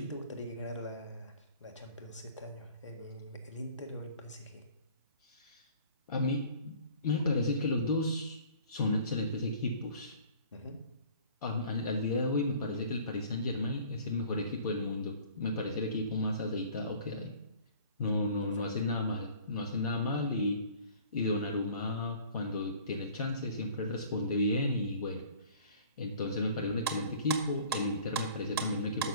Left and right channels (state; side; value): inverted; both; correlation -0.49